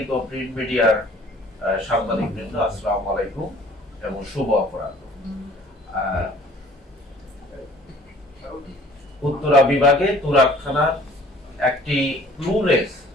ও প্রিন্ট মিডিয়ার সাংবাদিক বৃন্দ, আসসালামু আলাইকুম এবং শুভ অপরাহ্ন। উত্তরা বিভাগে তুরাগ থানার একটি ক্লুলেস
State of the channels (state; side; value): normal; both; correlation 0.53